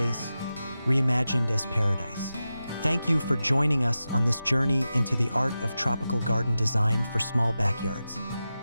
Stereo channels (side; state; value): both; inverted; correlation -0.93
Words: reimagined as paradise. Thank you for joining us on this journey into the art of tropical garden design for small backyards.